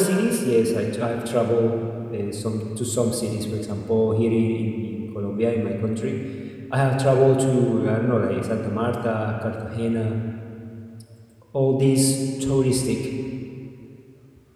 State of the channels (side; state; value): both; identical; correlation 1.00